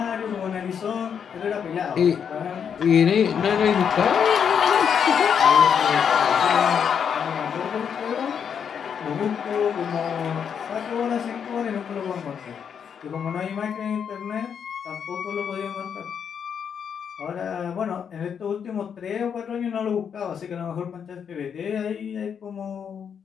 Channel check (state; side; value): quieter; right; 7.5 dB